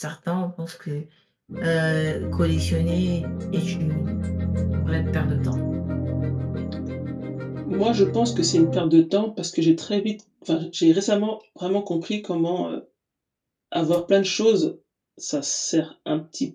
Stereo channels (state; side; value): identical; both; correlation 1.00